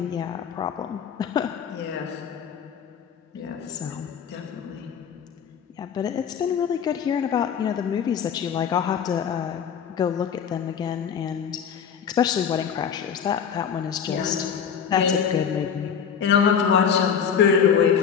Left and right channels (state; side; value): quieter; right; 7.6 dB